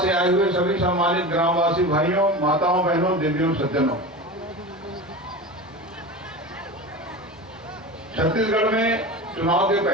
से आए हुए सभी सम्मानित ग्रामवासी भाइयों, माताओं, बहनों, देवियों, सज्जनों। छत्तीसगढ़ में चुनाव के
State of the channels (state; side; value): normal; both; correlation 0.29